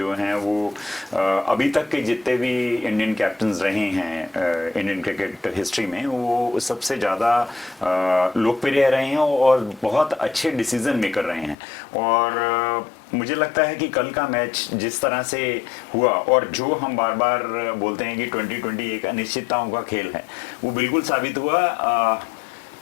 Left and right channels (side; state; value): right; drops out; at 11.6 s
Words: हैं वो अभी तक के जितने भी इंडियन कैप्टन्स रहे हैं इंडियन क्रिकेट हिस्ट्री में, वो सबसे ज़्यादा लोकप्रिय रहे हैं और बहुत अच्छे डिसीजन मेकर रहे हैं। और मुझे लगता है कि कल का मैच जिस तरह से हुआ और जो हम बार बार बोलते हैं कि 2020 एक अनिश्चितताओं का खेल है, वो बिल्कुल साबित हुआ।